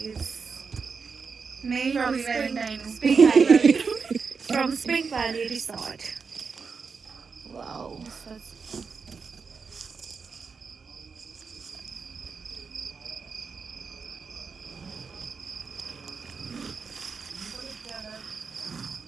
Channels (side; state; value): left; quieter; 5.3 dB